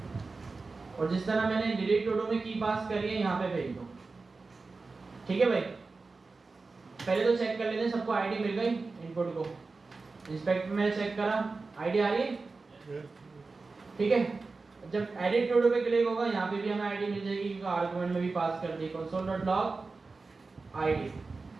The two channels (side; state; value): left; quieter; 3.9 dB